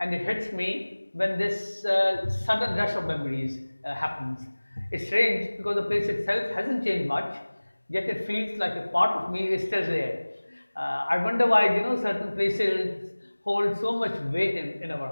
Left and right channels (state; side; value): inverted; both; correlation -1.00